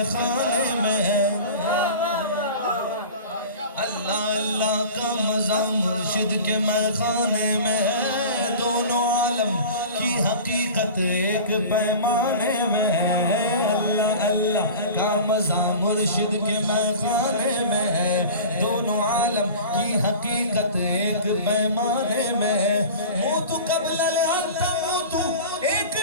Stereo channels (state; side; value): inverted; both; correlation -0.37